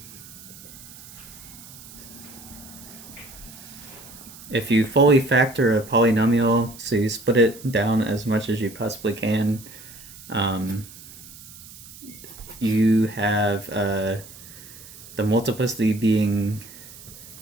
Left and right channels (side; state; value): right; noise; hiss, 18 dB below the sound